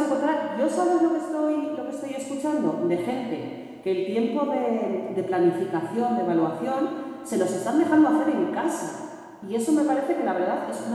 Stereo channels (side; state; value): both; identical; correlation 1.00